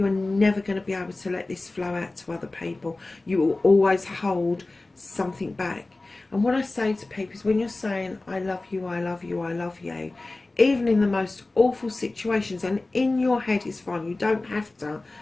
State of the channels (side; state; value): right; quieter; 3.1 dB